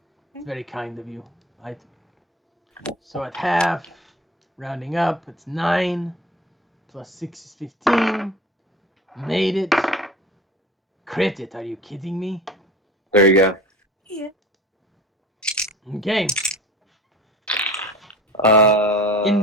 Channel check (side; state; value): both; normal; correlation 0.39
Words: It's very kind of you. So at half, rounding up, it's 9. +6 is 15. Made it. Crit it. Are you kidding me? There you go. Yeah. Okay. Uh,